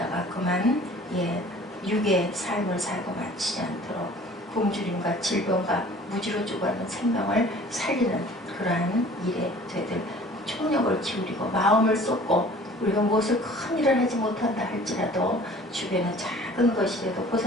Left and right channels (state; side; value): normal; both; correlation 0.49